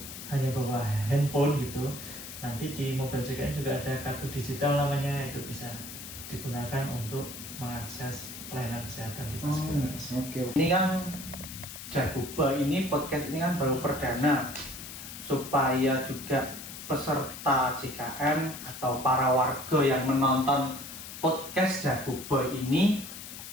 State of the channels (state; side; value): noise; left; hiss, 11 dB below the sound